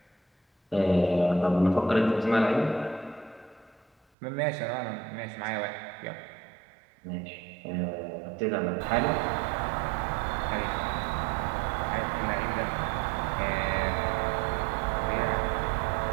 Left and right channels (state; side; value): drops out; left; at 4.0 s